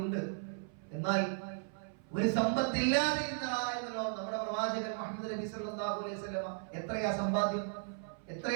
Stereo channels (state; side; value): silent; left; 54 dB below the other